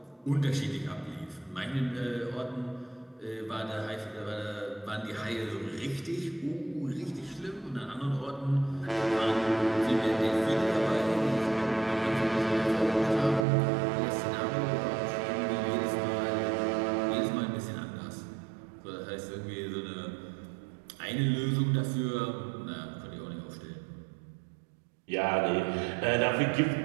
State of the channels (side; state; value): left; drops out; at 13.5 s